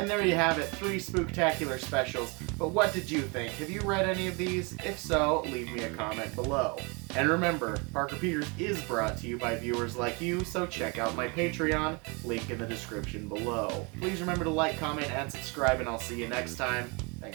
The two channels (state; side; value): quieter; left; 30.6 dB